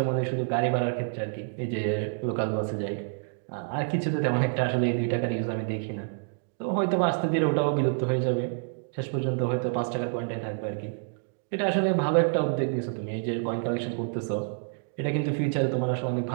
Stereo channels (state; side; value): silent; left; digital silence